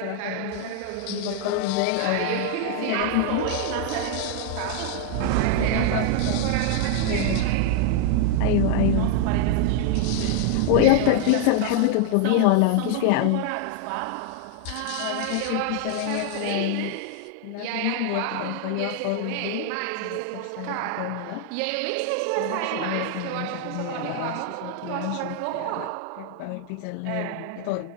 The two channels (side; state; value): both; different; correlation 0.00